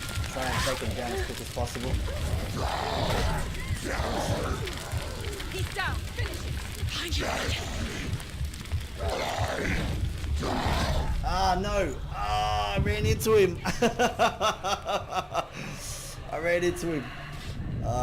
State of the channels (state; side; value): identical; both; correlation 1.00